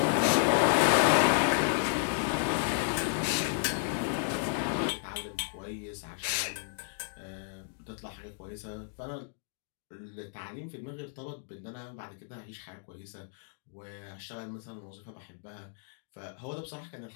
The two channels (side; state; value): right; silent; digital silence